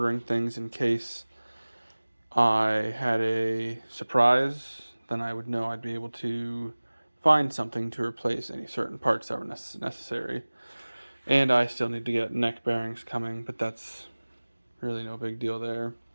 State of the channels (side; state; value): both; inverted; correlation -1.00